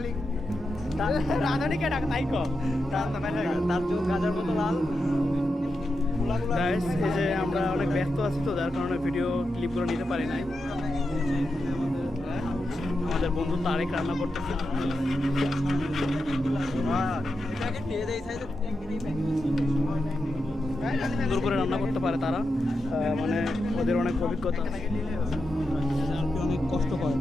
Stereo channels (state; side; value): normal; both; correlation 0.87